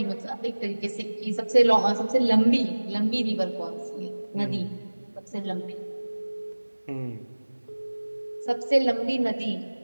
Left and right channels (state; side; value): inverted; both; correlation -1.00